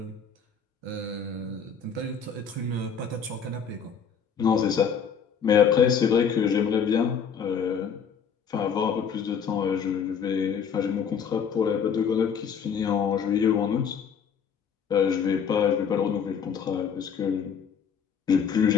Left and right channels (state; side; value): quieter; right; 6.9 dB